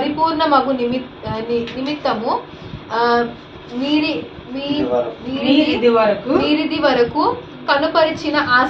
నిమిత్తము మీరిది వరకు కనుపరిచిన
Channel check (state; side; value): identical; both; correlation 1.00